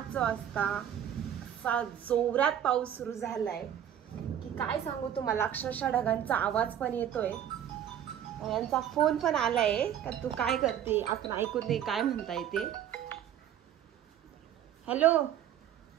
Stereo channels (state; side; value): quieter; left; 10.1 dB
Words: वाजता असा जोरात पाऊस सुरू झालाय की काय सांगू तुम्हाला. अक्षरशः ढगांचा आवाज पण येतोय. यांचा फोन पण आलाय का तू काय करते, आपण ऐकून दे काय म्हणताय ते. हॅलो,